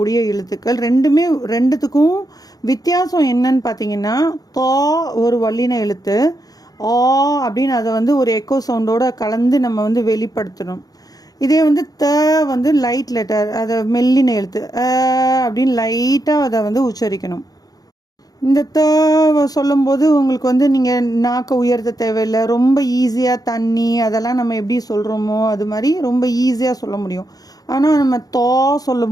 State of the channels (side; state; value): right; late; 0.18 ms